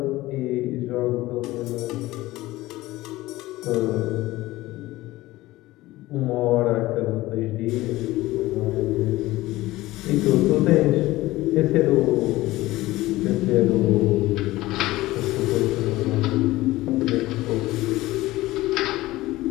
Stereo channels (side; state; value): right; quieter; 17.9 dB